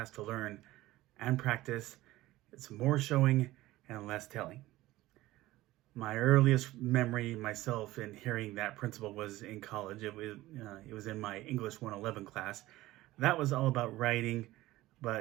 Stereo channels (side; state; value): left; quieter; 17.2 dB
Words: to learn and practice. It's more showing and less telling. My earliest memory myself in hearing that principle was in college. It was in my English 111 class. That was all about writing,